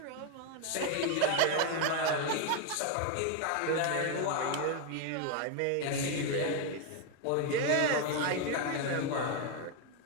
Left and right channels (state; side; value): different; both; correlation 0.01